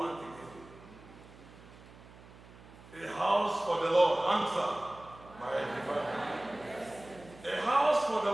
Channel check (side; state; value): right; noise; hum, 20 dB below the sound